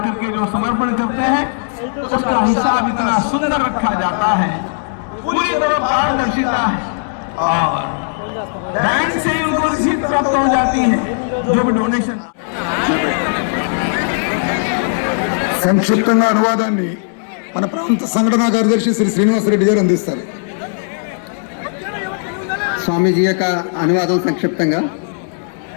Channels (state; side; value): silent; right; digital silence